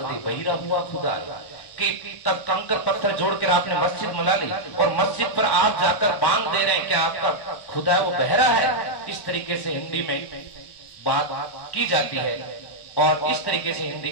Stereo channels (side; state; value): right; late; 1.1 ms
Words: दे बहिरा हुआ खुदा, कि तब कंकर पत्थर जोड़कर आपने मस्जिद बना ली और मस्जिद पर आप जाकर बांध दे रहे हैं, क्या आपका खुदा है वो बहरा है। इस तरीके से हिंदी में बात की जाती है और इस तरीके से हिंदी